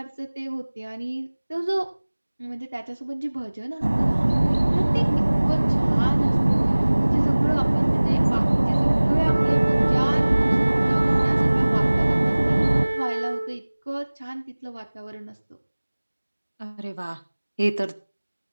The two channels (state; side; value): inverted; both; correlation -1.00